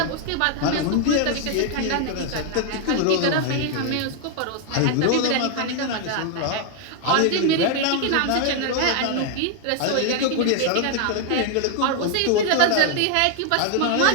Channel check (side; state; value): both; different; correlation 0.00